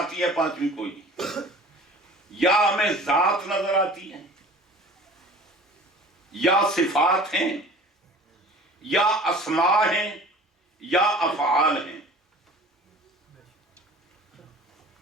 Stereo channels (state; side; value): normal; both; correlation 0.45